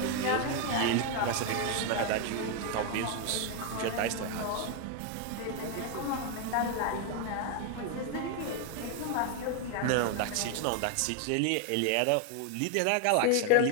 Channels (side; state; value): both; different; correlation 0.01